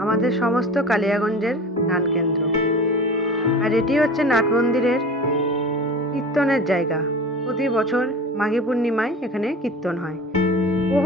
আমাদের সমস্ত কালিয়াগঞ্জের নাট কেন্দ্র। আর এটি হচ্ছে নাট মন্দিরের কীর্তনের জায়গা। প্রতি বছর মাঘী পূর্ণিমায় এখানে কীর্তন হয়।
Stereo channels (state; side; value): normal; both; correlation 0.36